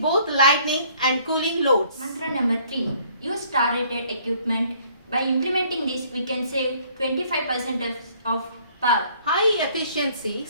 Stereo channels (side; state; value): both; inverted; correlation -0.60